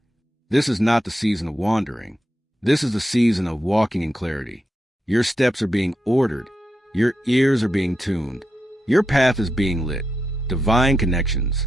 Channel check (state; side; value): normal; both; correlation 0.86